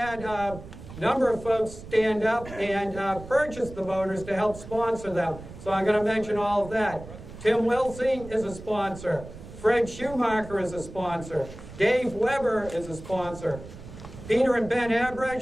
a number of folks stand up and purchase the motors to help sponsor them. So I'm going to mention all of that. Tim Wilsey is a sponsor. Fred Schumacher is a sponsor. Dave Weber is a sponsor. Peter and Ben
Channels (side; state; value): right; noise; rumble, 14 dB below the sound